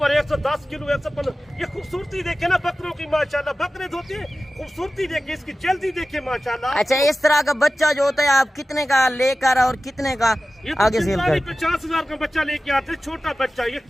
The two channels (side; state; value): both; normal; correlation 0.95